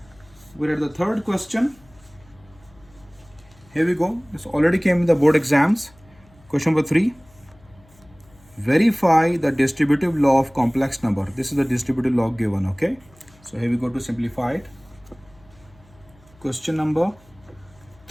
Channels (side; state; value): left; noise; hum, 28 dB below the sound